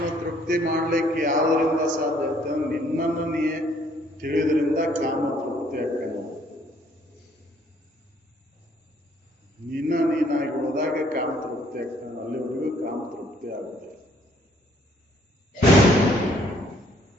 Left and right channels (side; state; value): both; normal; correlation 0.64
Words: ತೃಪ್ತಿ ಮಾಡ್ಲಿಕ್ಕೆ ಯಾವುದರಿಂದ ಸಾಧ್ಯ ಐತೆ? ನಿನ್ನನ್ನು ನೀ ತಿಳಿದ್ರಿಂದ ಕಾಮ ತೃಪ್ತಿ ಆಗ್ತಾನೆ. ನೀನಾಗಿ ಉಳಿದಾಗ ಕಾಮ ತೃಪ್ತಿ ಆಗ್ತಾನೆ. ಅಲ್ಲಿವರೆಗೂ ಕಾಮ ತೃಪ್ತಿ ಆಗುದಿಲ್ಲ.